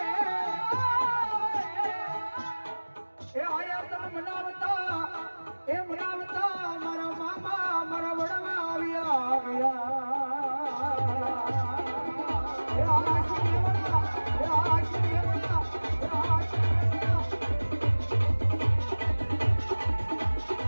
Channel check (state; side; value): inverted; both; correlation -1.00